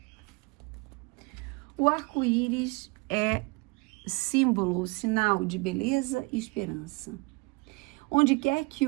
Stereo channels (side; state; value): left; quieter; 27.1 dB